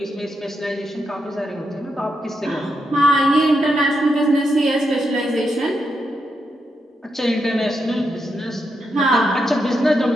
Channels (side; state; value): both; normal; correlation 0.83